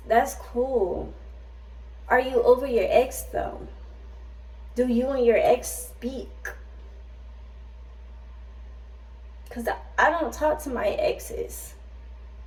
That's cool. Are you over your ex though? Do you and your ex speak? Because I don't talk to my exes.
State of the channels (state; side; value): identical; both; correlation 1.00